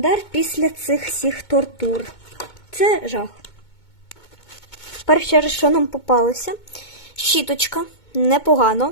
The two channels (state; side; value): late; right; 2.2 ms